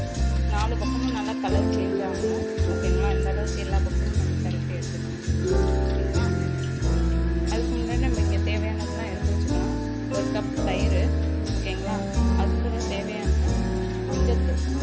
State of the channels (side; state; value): both; identical; correlation 1.00